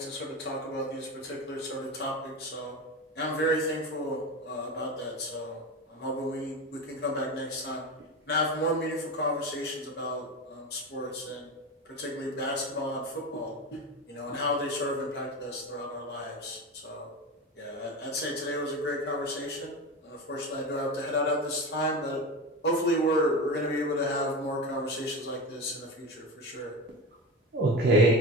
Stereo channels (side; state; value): both; normal; correlation 0.24